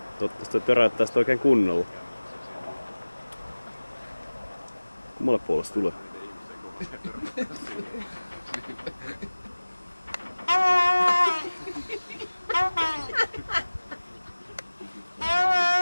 Toivottavasti toi töräyttää sitä oikein kunnolla. Kummalle puolelle se tulee?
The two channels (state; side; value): inverted; both; correlation -1.00